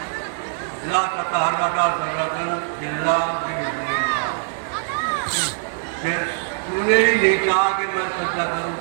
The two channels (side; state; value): left; silent; digital silence